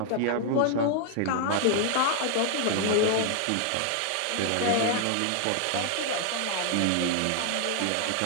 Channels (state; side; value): different; both; correlation 0.00